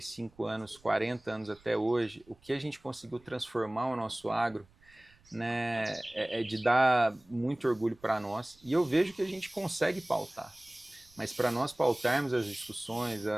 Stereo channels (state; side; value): noise; right; rumble, 29 dB below the sound